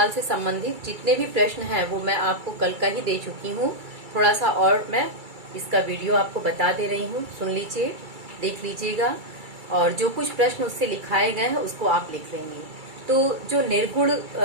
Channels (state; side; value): late; left; 2.3 ms